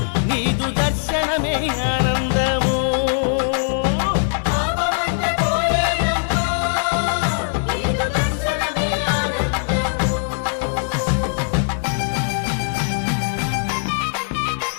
నీదు దర్శనమే ఆనందము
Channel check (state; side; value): silent; right; digital silence